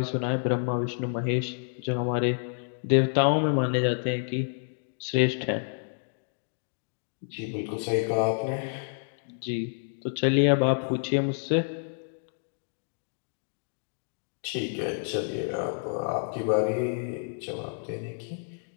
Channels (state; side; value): silent; right; digital silence